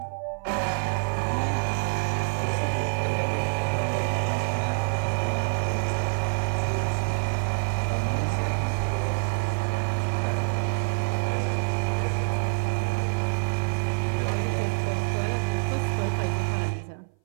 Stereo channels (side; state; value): left; silent; 58 dB below the other